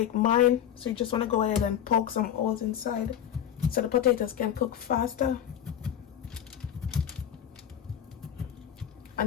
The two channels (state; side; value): quieter; right; 9.9 dB